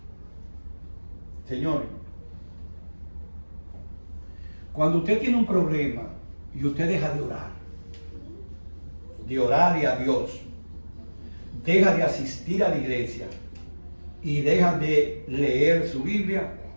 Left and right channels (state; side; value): inverted; both; correlation -1.00